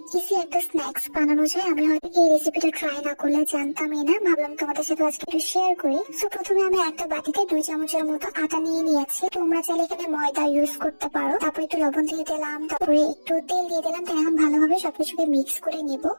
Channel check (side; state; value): both; inverted; correlation -1.00